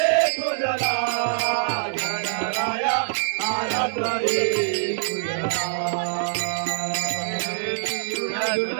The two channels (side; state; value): left; silent; 62 dB below the other